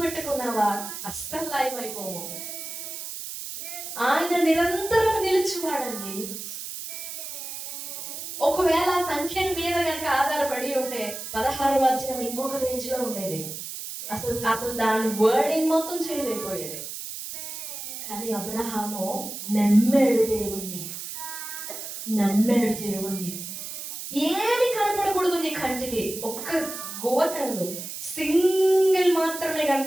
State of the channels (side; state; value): right; noise; hiss, 8 dB below the sound